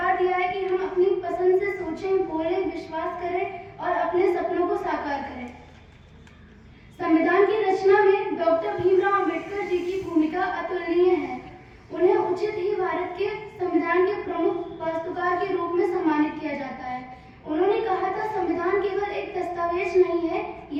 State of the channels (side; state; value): both; identical; correlation 1.00